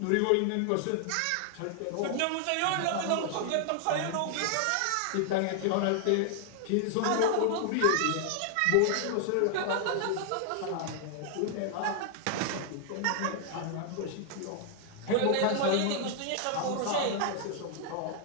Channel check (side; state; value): both; different; correlation 0.00